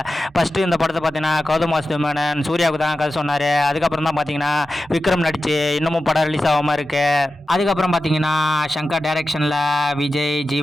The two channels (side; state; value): both; normal; correlation 0.93